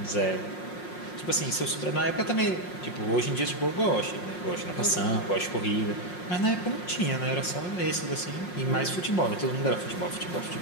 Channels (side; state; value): right; late; 5.5 ms